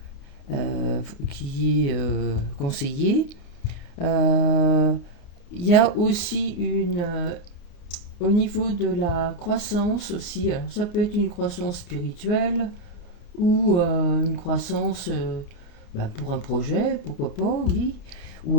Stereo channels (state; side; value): late; right; 29 ms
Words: qui est conseillé. Euh, Il y a aussi au niveau de la croissance aussi, alors ça peut être une croissance spirituelle ou une croissance pour un projet, pourquoi pas, oui. Ou